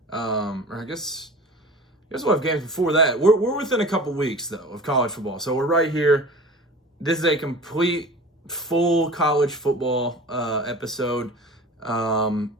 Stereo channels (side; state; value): both; normal; correlation 0.39